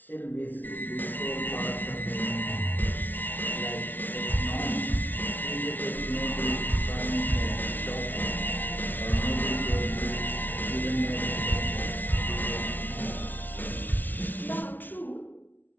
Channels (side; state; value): right; late; 0.085 ms